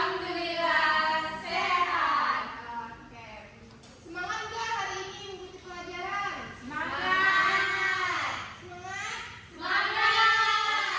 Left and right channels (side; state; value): both; identical; correlation 1.00